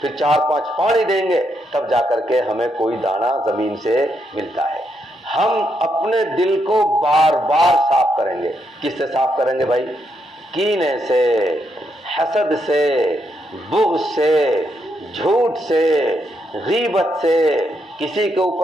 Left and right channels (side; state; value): both; normal; correlation 0.79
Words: 4-5 پانی دیں گے، تب جا کر کے ہمیں کوئی دانہ زمین سے ملتا ہے۔ ہم اپنے دل کو بار بار صاف کریں گے۔ کس سے صاف کریں گے بھائی؟ کینے سے، حسد سے، بغض سے، جھوٹ سے، غیبت سے، کسی کے